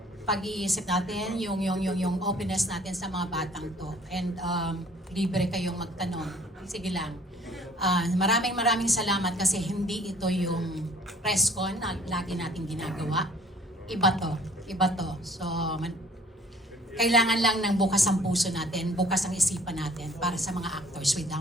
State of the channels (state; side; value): normal; both; correlation 0.54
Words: pag-iisip natin, yung openness natin sa mga batang to. And libre kayong magtanong. Sige lang. Maraming salamat kasi hindi ito yung press con na lagi nating ginagawa. Iba to. So, kailangan lang ng bukas ang puso natin, bukas ang isipan natin para sa mga actors with